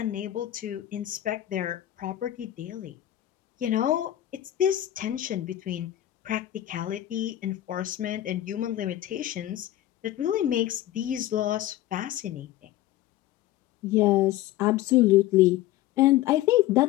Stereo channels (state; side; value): quieter; right; 14.0 dB